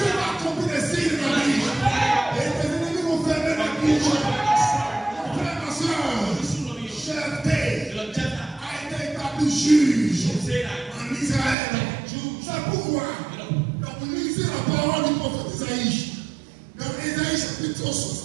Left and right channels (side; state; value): left; drops out; at 11.6 s